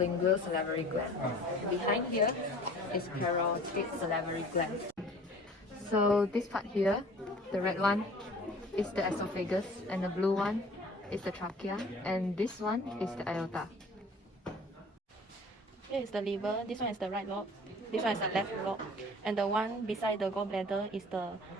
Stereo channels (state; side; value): normal; both; correlation 0.47